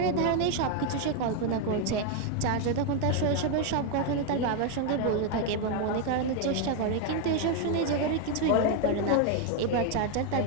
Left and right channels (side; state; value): both; different; correlation 0.01